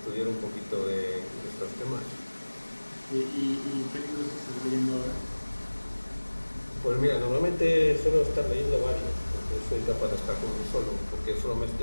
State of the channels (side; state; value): both; inverted; correlation -1.00